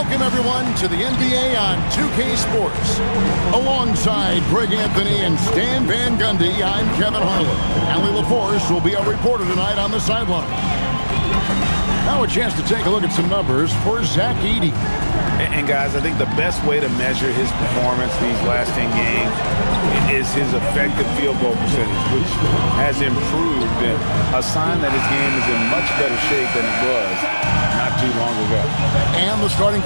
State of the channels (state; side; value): inverted; both; correlation -1.00